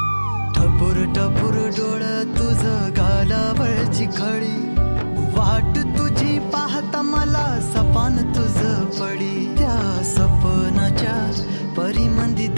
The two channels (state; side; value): inverted; both; correlation -1.00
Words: टपूर टपूर डोळं तुझं गालावरची खळी वाट तुझी पाहता मला सपान तुझं पडी त्या सपनाच्या परिमंदी